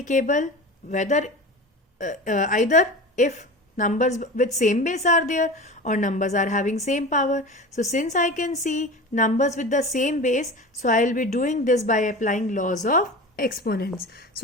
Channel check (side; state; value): both; normal; correlation 0.32